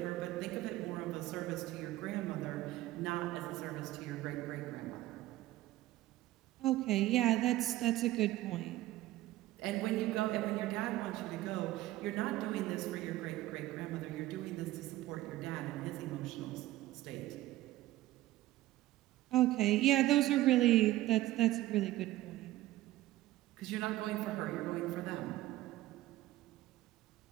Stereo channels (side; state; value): left; quieter; 16.1 dB